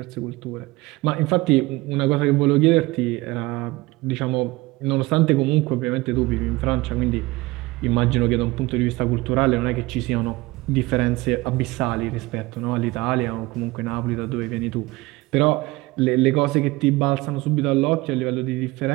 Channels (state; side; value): quieter; left; 21.1 dB